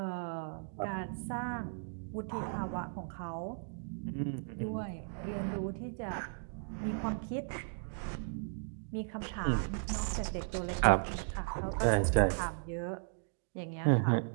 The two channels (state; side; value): silent; left; digital silence